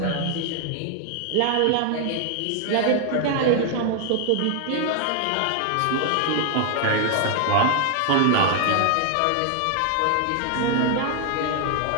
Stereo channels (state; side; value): different; both; correlation 0.00